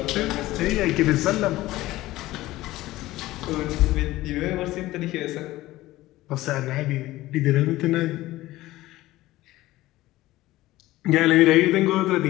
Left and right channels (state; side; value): quieter; right; 17.0 dB